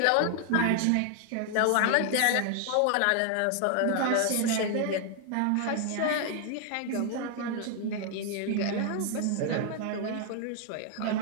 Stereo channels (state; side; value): different; both; correlation 0.00